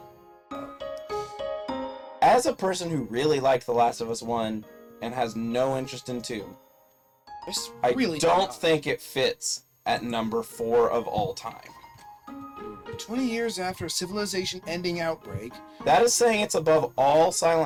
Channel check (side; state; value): both; identical; correlation 1.00